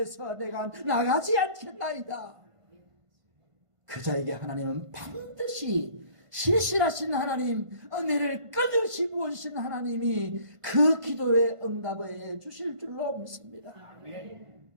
내가 나가지 않겠나이다. 그 자에게 하나님은 반드시 신실하신 하나님, 은혜를 끊임없이 부어주신 하나님이 그 기도에 응답해 주실 줄로 믿습니다.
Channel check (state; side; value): late; left; 1.5 ms